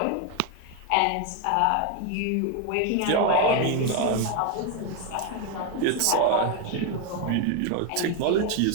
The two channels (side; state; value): both; different; correlation 0.01